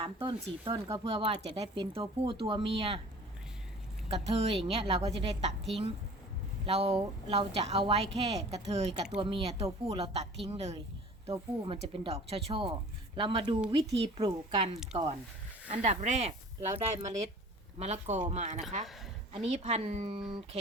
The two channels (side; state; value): both; normal; correlation 0.45